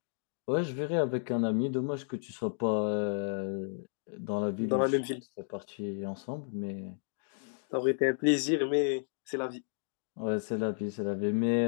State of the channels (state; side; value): silent; right; digital silence